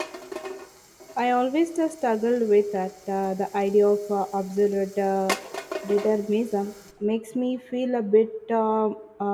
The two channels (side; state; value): both; identical; correlation 1.00